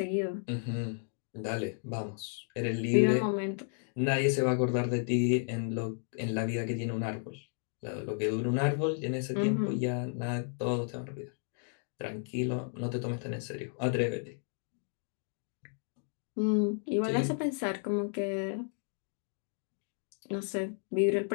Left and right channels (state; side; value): silent; right; 56 dB below the other